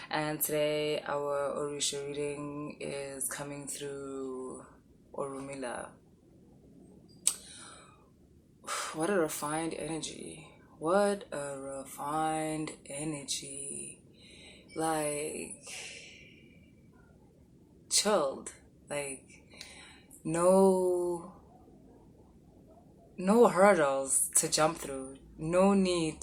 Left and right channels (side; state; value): both; identical; correlation 1.00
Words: and today our Orisha reading is coming through Urumila. What a refined energy. What a refined energy. Like, chilled. Like, no hurdles to jump through. No need